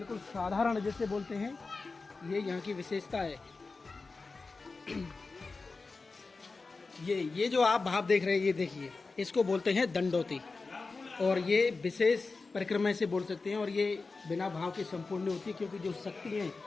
साधारण जैसे बोलते हैं। ये यहाँ की विशेषता है। ये जो आप भाव देख रहे हैं, ये देखिए, इसको बोलते हैं दंडोती। और ये विशेष परिक्रमा से बोल सकते हैं। और ये बिना भाव के संपूर्ण नहीं होती, क्योंकि जो शक्ति है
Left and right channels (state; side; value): quieter; right; 4.0 dB